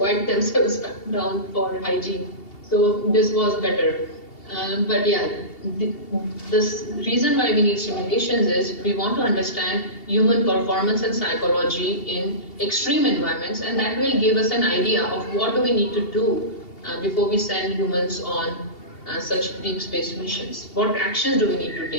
themselves down for hygiene. So this was better. But yeah, the reason why we need simulations is we want to understand human performance and psychology in extreme environments, and that will give us an idea of what do we need to do before we send humans on such deep space missions. What actions do we need to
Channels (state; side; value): late; right; 2.7 ms